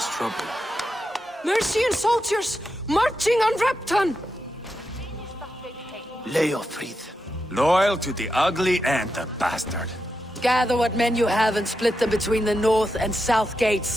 trouble. Mercian soldiers marching on Repton! LEOFRITH. Loyal to the ugly and the bastard. Gather what men you have and split them between the north and south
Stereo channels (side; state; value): both; normal; correlation 0.87